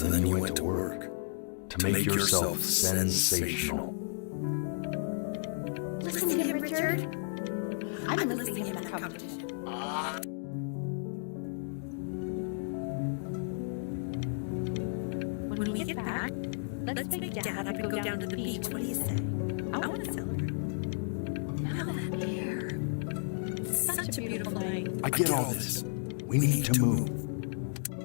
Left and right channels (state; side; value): silent; right; digital silence